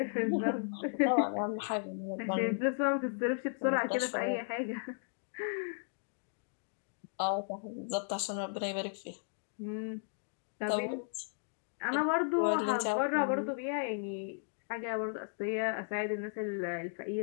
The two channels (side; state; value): right; silent; digital silence